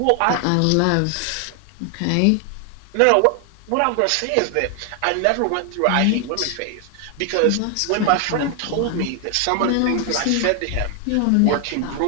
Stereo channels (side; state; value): both; different; correlation 0.00